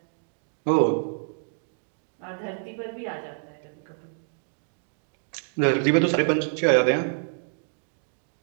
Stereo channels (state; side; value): silent; left; 57 dB below the other